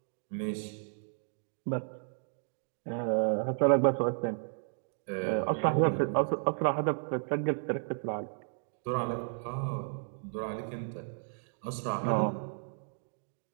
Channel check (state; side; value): silent; left; digital silence